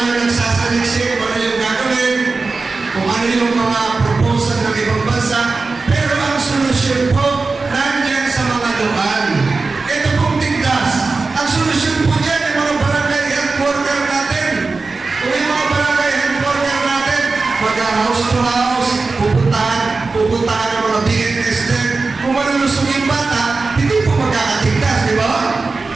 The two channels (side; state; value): left; quieter; 3.9 dB